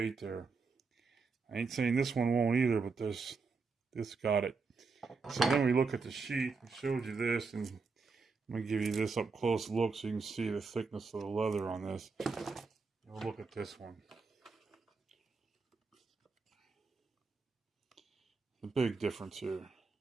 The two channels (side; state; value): left; quieter; 4.5 dB